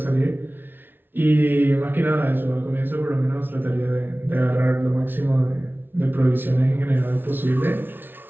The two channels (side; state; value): left; late; 0.10 ms